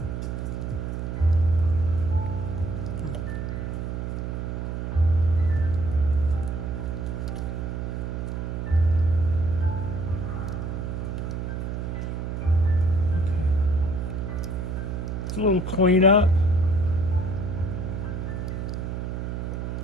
it's a little cleanup.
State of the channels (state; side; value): noise; right; hum, 4 dB below the sound